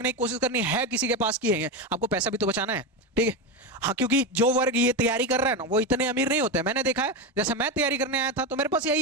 की कोशिश करनी है, किसी के पास की है, आपको पैसा भी तो बचाना है, ठीक है। हाँ, क्योंकि जो वर्ग ये तैयारी कर रहा है ना वो इतने अमीर नहीं होते। मैंने देखा है, जैसे मैं तैयारी करने आया था तो मेरे पास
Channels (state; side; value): normal; both; correlation 0.14